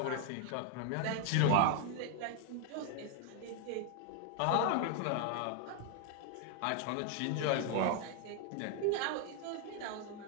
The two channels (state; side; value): different; both; correlation 0.01